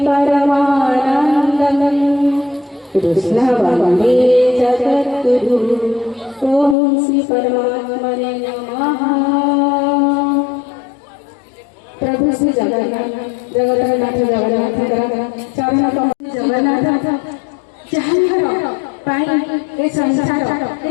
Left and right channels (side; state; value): right; drops out; at 6.8 s